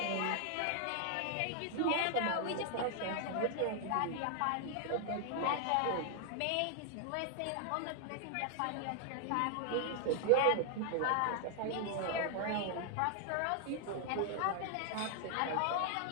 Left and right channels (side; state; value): both; different; correlation 0.00